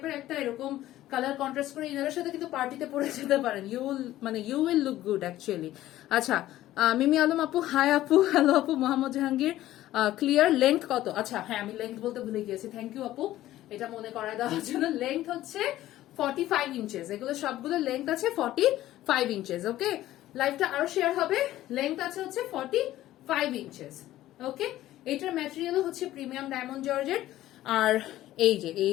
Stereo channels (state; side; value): quieter; right; 14.5 dB